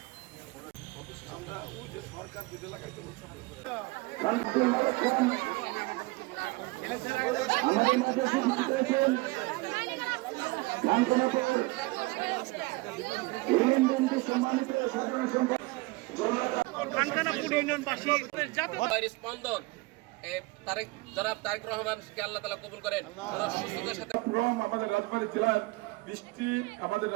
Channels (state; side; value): quieter; left; 23.4 dB